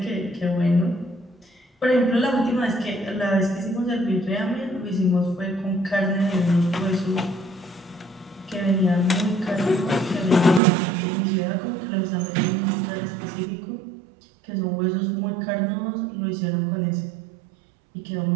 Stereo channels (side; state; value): left; drops out; at 10.6 s